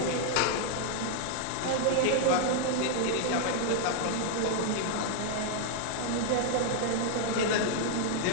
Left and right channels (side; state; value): both; different; correlation 0.00